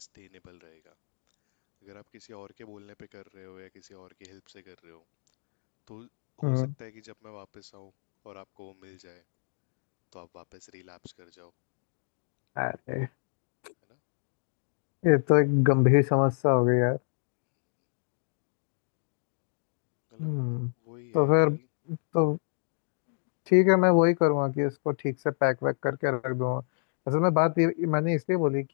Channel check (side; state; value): right; silent; digital silence